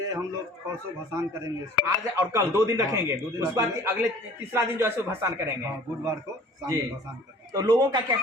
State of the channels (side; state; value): both; normal; correlation 0.49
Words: हम लोग परसों भसान करेंगे, आज और कल 2 दिन रखेंगे। 2 दिन उसके बाद अगले तीसरा दिन जो है सो भसान करेंगे। बुधवार को शाम जी। में भसान करेंगे। तो लोगों का क्या